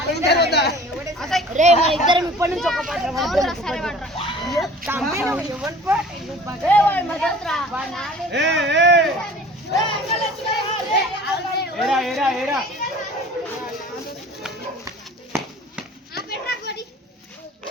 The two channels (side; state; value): both; normal; correlation 0.46